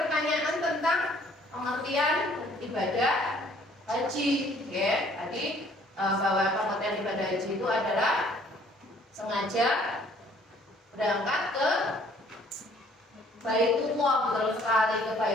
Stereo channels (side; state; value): both; normal; correlation 0.59